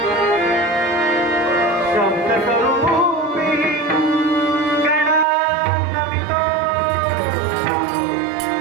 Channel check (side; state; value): left; drops out; at 5.2 s